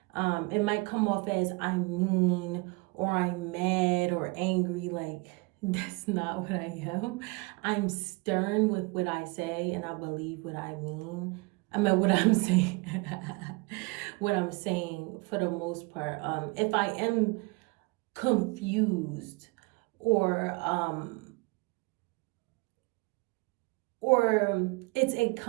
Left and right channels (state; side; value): quieter; left; 26.8 dB